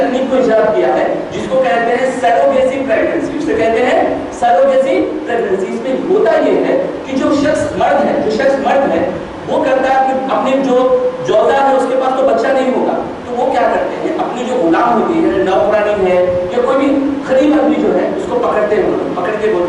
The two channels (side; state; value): both; identical; correlation 1.00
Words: کو ایجاد کیا ہے جس کو کہتے ہیں سیروگیسی پریگننسی. اسے کہتے ہیں سیروگیسی پریگننسی. اس میں ہوتا یہ ہے کہ جو شخص مرد ہے وہ کرتا ہے کہ اپنی جو جوزا ہے اس کے پاس تو بچہ نہیں ہوگا, تو وہ کیا کرتے ہیں, اپنی جو غلام ہوتی ہے, نوکرانی ہے یا کوئی بھی غریب آدمی جو ہے اس کو پکڑ کے